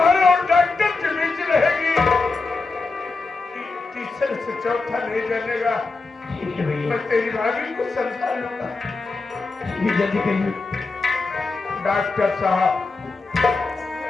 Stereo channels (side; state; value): right; quieter; 3.9 dB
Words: और डॉक्टर के बीच रहेगी। तीसरे से चौथा नहीं जानेगा। ठीक है भैया, मैं तेरी भाभी को समझा लूंगा। ये जल्दी करिए। डॉक्टर साहब,